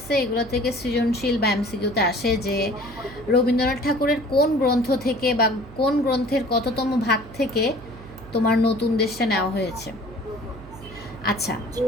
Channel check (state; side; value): noise; right; hum, 18 dB below the sound